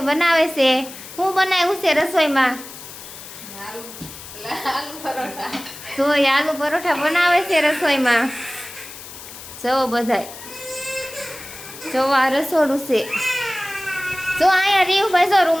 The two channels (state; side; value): noise; left; hiss, 14 dB below the sound